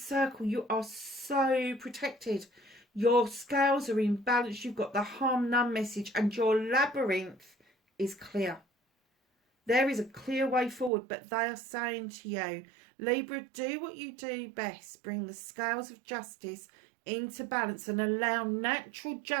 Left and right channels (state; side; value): drops out; left; at 10.9 s